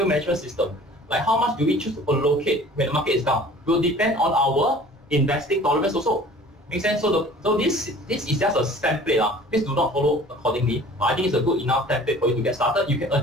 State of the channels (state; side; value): normal; both; correlation 0.47